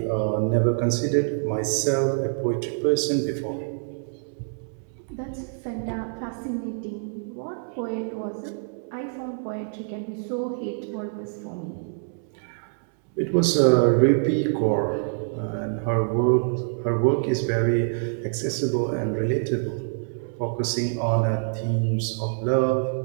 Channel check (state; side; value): silent; left; 61 dB below the other